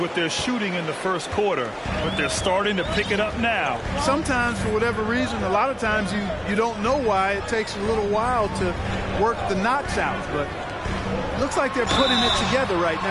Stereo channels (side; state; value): both; identical; correlation 1.00